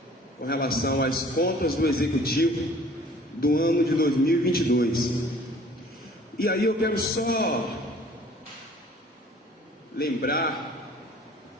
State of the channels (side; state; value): both; normal; correlation 0.52